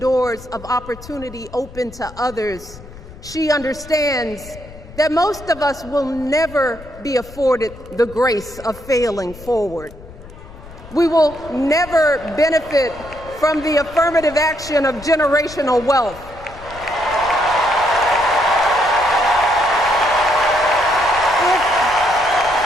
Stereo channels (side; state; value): left; noise; rumble, 17 dB below the sound